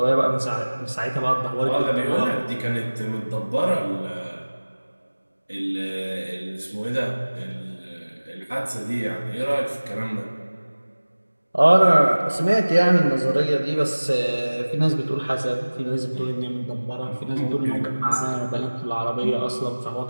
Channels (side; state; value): both; inverted; correlation -1.00